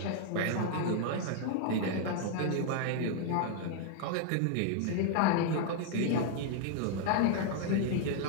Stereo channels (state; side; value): different; both; correlation 0.00